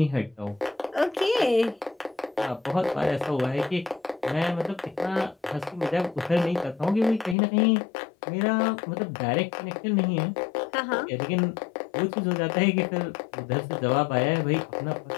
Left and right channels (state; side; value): drops out; right; at 7.4 s